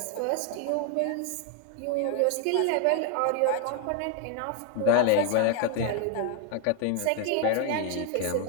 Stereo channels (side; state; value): both; different; correlation 0.00